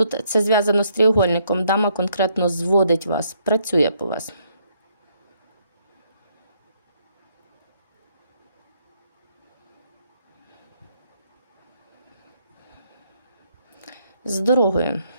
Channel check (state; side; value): inverted; both; correlation -0.71